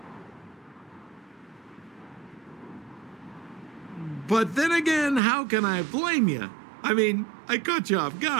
But then again, how can I blame you? I mean, I caught you off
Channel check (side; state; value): left; drops out; at 5.2 s